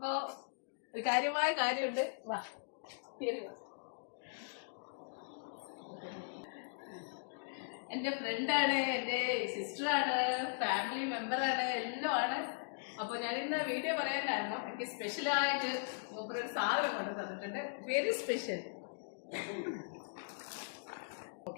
ഒരു കാര്യമായ കാര്യമുണ്ട്. വാ, എന്റെ ഫ്രണ്ടാണ്, എന്റെ സിസ്റ്ററാണ്, ഫാമിലി മെമ്പറാണ്, എല്ലാം ആണ്. അപ്പൊ ഞാൻ ഇന്ന് വീഡിയോ പറയാൻ കാരണം എനിക്ക് സ്പെഷ്യലായിട്ട് ഒരു സാധനം കൊണ്ടു തന്നിട്ടുണ്ട്. Very special.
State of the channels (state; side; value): silent; right; digital silence